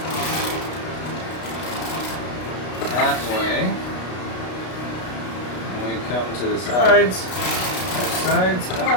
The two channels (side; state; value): right; late; 33 ms